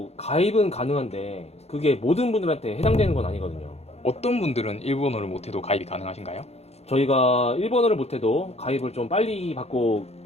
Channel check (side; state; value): right; late; 0.31 ms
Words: 가입은 가능한데 그게 모든 분들한테 해당되는 건 아니거든요. 어떤 분들은 일본어를 못해도 가입이 가능하신가요? 저희가 일본어를 못해도 가입을 좀 빨리 받고